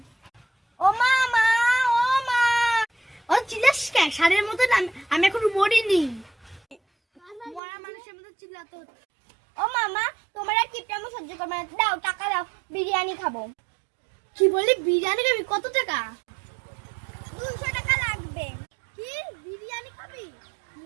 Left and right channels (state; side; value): drops out; left; at 7.6 s